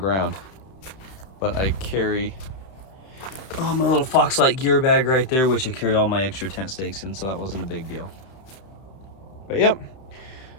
But I carry, oh, my little Foxlight gear bag right there, which I carry all my extra tent stakes in, so that wasn't a big deal. But yep,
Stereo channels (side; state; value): right; late; 31 ms